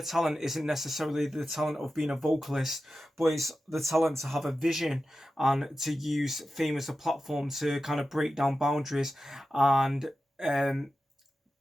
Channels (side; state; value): both; normal; correlation 0.93